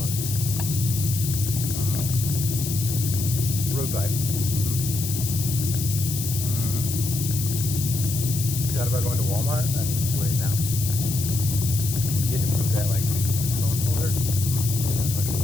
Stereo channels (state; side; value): noise; left; hiss, 5 dB below the sound